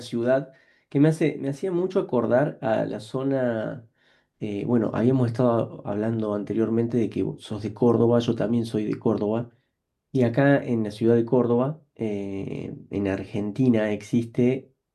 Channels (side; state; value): both; identical; correlation 1.00